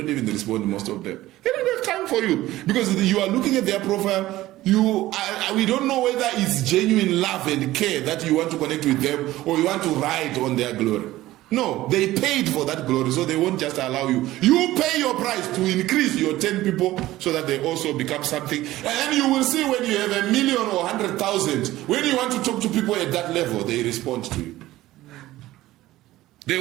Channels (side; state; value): left; quieter; 16.2 dB